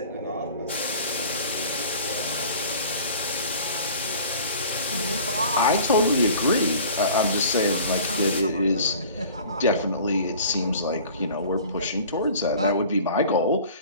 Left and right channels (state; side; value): inverted; both; correlation -0.45